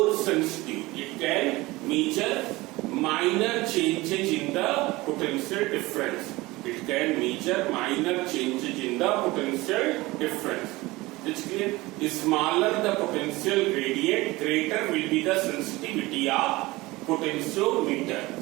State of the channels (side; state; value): left; quieter; 20.7 dB